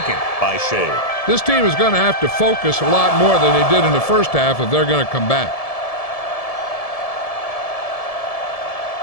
by Shea. This team is going to have to focus a lot more than they did in the first half if they're going to come back.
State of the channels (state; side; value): late; right; 1.7 ms